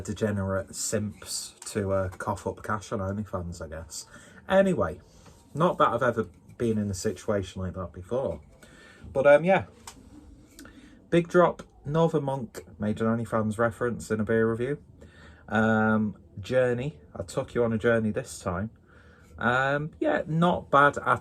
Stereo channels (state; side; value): identical; both; correlation 1.00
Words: degenerate simps to cough up cash on OnlyFans, I guess. Anyway, not that I've ever been in a situation like that before. But yeah. Big Drop, Northern Monk made an OnlyFans reference in a beer review. Journey, I took you on a journey this time. Yeah, not bad